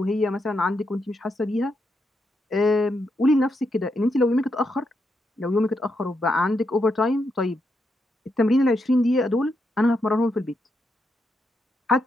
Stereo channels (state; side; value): normal; both; correlation 0.82